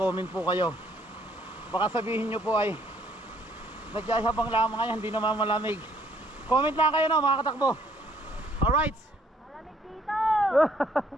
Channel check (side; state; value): both; normal; correlation 0.65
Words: po kayo. Baka sabihin nyo po ay nagyayabang lang mga yan, hindi naman malamig. Comment lang kayo no, mga katakbo. Alright. Malamig dito!